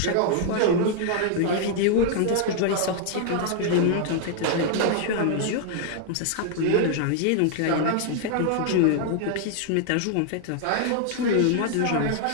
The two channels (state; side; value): different; both; correlation 0.00